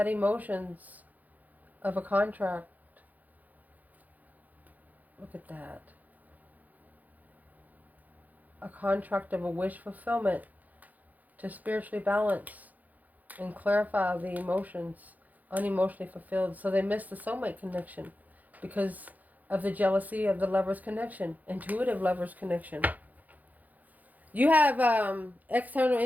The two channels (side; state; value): left; late; 0.080 ms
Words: emotions of a contract. Look at that. A contract of a wish fulfillment to spiritually balance and clarify the emotions, unemotionally fulfilled. So they miss the soulmate connection because of the jealousy of the lover's connection, intuitive lover's connection. You have external